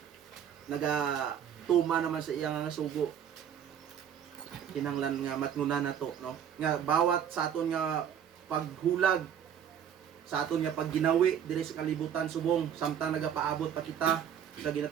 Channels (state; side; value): quieter; left; 8.8 dB